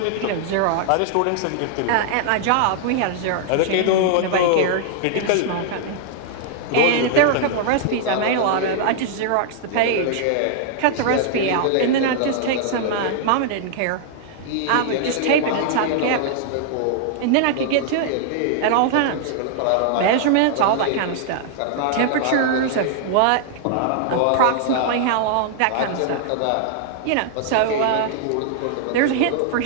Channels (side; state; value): both; different; correlation -0.01